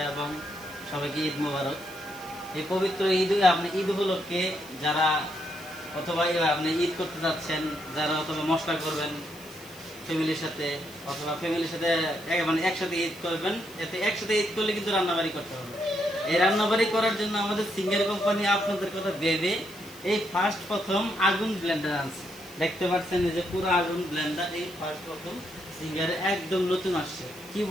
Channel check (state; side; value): noise; left; hiss, 20 dB below the sound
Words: এবং সবাইকে ঈদ মোবারক। এই পবিত্র ঈদ উপলক্ষে যারা অথবা আপনি ঈদ করতে যাচ্ছেন, যারা অথবা মশলা করবেন ফ্যামিলির সাথে অথবা ফ্যামিলির সাথে একসাথে ঈদ করবেন, এতে একসাথে ঈদ করলে কিন্তু রান্নাবাড়ি করতে হবে। এই রান্নাবাড়ি করার জন্য আমাদের সিঙ্গার কোম্পানি আপনাদের কথা ভেবে এই প্রথম আগুন ব্লেন্ডার আনছে। দেখতে পাচ্ছেন যে পুরো আগুন ব্লেন্ডার এই প্রথম সিঙ্গারে একদম নতুন আসছে। কি